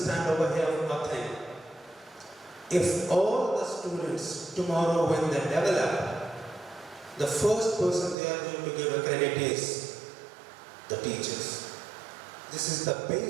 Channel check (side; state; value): left; drops out; at 8.2 s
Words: over here one thing. If all the students tomorrow when they develop, the first person they are going to give a credit is the teachers. This is the